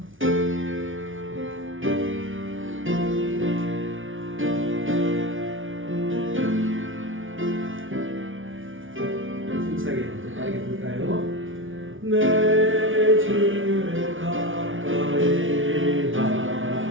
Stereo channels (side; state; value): left; late; 0.57 ms